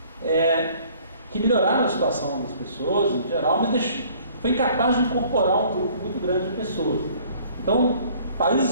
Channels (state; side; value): inverted; both; correlation -0.56